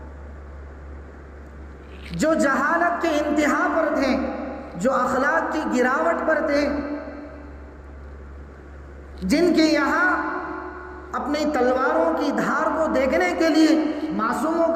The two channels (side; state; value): both; identical; correlation 1.00